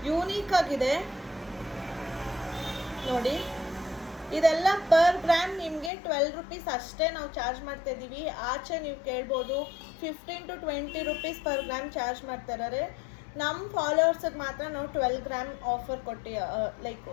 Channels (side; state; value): right; drops out; at 5.9 s